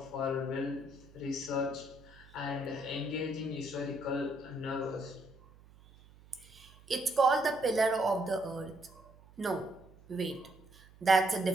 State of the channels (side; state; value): right; noise; hum, 24 dB below the sound